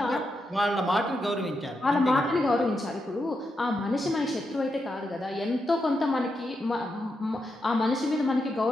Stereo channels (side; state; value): both; normal; correlation 0.85